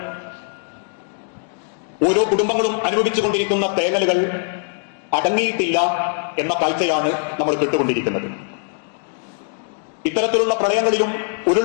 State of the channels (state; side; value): silent; right; digital silence